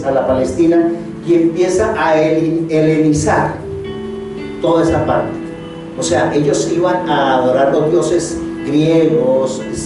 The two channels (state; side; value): identical; both; correlation 1.00